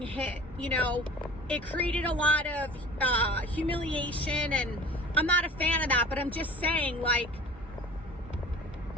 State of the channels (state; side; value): normal; both; correlation 0.42